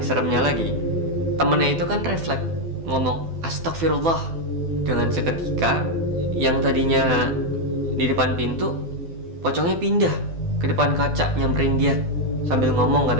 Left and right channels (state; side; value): late; left; 12 ms